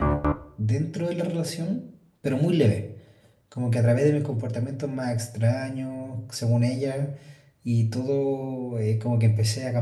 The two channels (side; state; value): both; identical; correlation 1.00